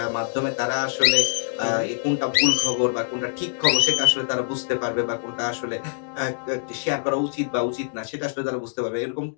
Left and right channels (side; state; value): right; silent; digital silence